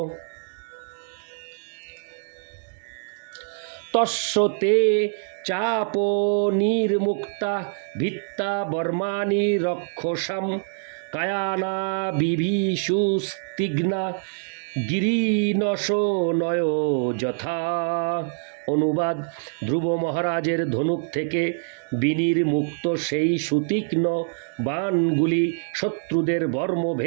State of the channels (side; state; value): left; silent; digital silence